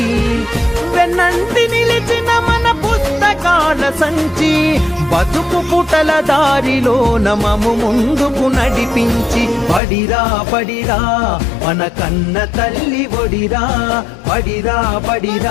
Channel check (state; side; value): drops out; right; at 9.8 s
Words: వెన్నంటి నిలిచిన మన పుస్తకాల సంచి బతుకు పుటల దారిలో నమము ముందుకు నడిపించి, పడిరా పడిరా మన కన్న తల్లి ఒడిరా, పడిరా